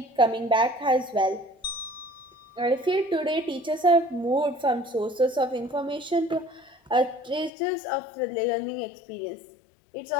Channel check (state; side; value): drops out; right; at 7.5 s